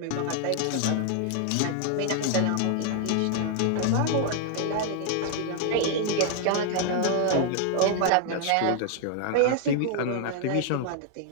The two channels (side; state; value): both; different; correlation 0.00